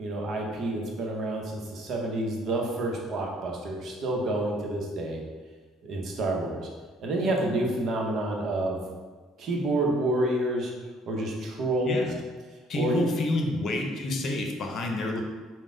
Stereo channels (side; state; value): both; normal; correlation 0.61